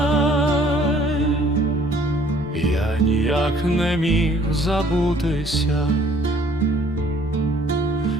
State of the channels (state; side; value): normal; both; correlation 0.58